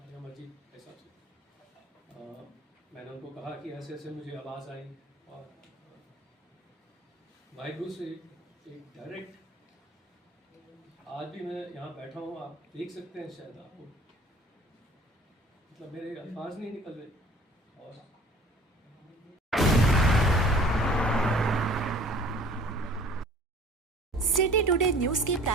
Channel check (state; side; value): normal; both; correlation 0.49